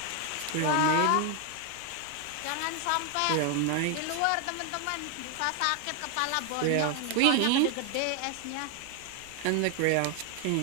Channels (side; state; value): both; different; correlation 0.00